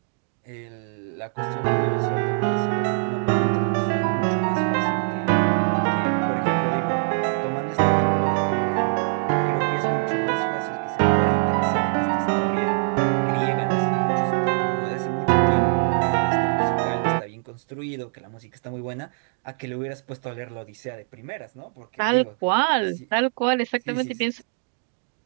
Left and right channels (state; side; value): silent; left; digital silence